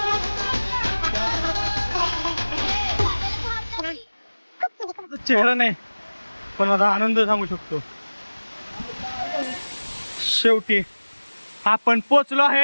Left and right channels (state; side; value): inverted; both; correlation -1.00